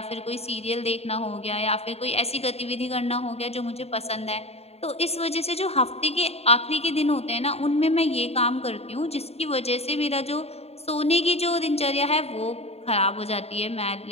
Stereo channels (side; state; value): right; late; 0.30 ms